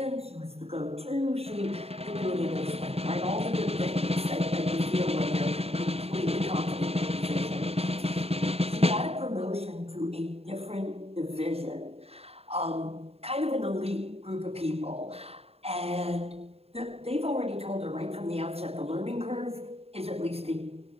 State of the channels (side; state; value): left; late; 0.29 ms